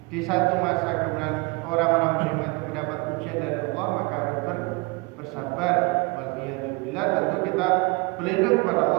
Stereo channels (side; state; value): left; quieter; 26.4 dB